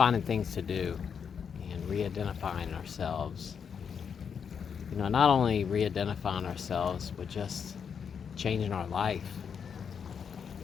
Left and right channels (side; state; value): right; quieter; 6.9 dB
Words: things to do and re-identifying ourselves. Not only re-identifying ourselves, but just changing our life